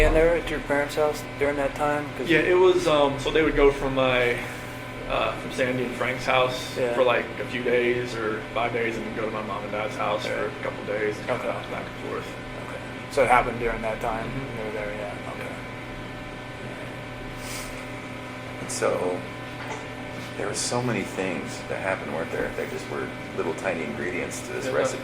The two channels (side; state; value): both; identical; correlation 1.00